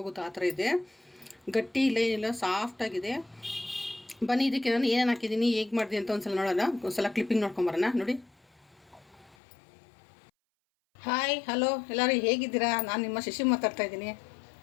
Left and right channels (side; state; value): right; drops out; at 9.3 s